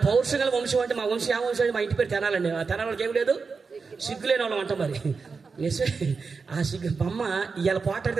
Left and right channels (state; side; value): quieter; left; 4.9 dB